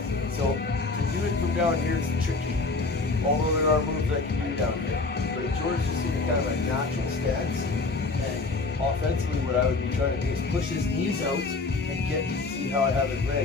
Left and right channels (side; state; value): right; quieter; 3.7 dB